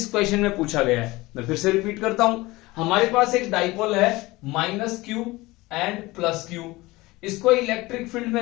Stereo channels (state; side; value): quieter; right; 20.6 dB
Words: क्वेश्चन में पूछा गया है। मैं फिर से रिपीट करता हूं, हमारे पास एक डाइपोल है -q एंड +q। इसको इलेक्ट्रिक फील्ड में